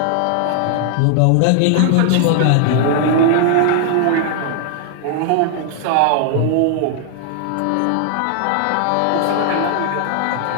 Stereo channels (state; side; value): different; both; correlation 0.00